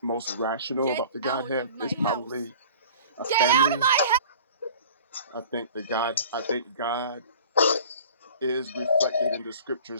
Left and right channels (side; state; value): both; inverted; correlation -0.45